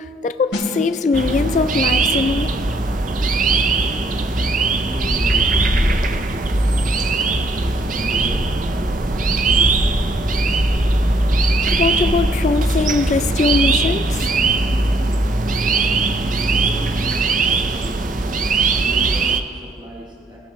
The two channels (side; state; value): both; normal; correlation 0.67